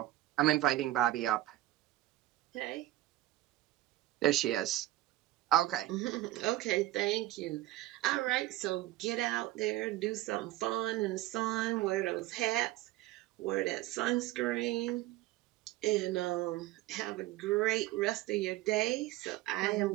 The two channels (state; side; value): quieter; left; 16.1 dB